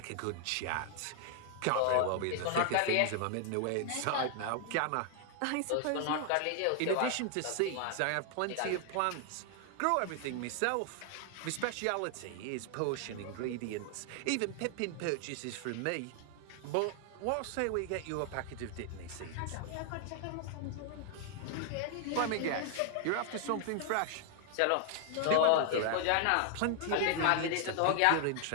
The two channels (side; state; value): both; different; correlation 0.00